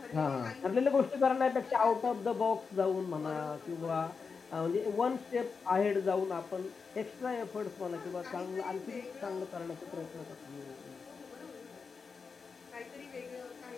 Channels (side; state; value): right; quieter; 5.2 dB